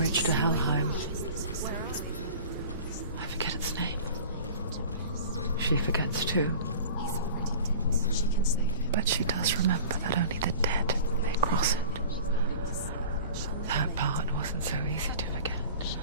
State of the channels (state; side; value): inverted; both; correlation -0.41